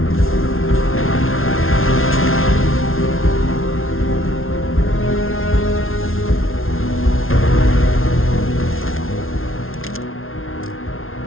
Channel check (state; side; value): late; right; 0.61 ms